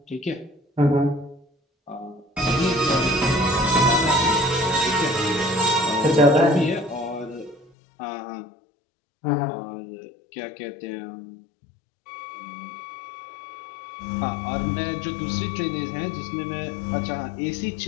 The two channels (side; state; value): right; drops out; at 7.7 s